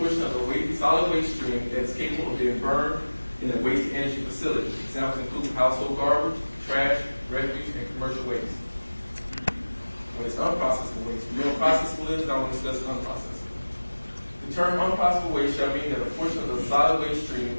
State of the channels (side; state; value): both; inverted; correlation -1.00